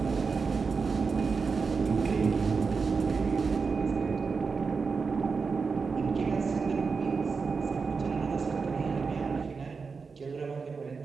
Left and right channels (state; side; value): quieter; left; 5.0 dB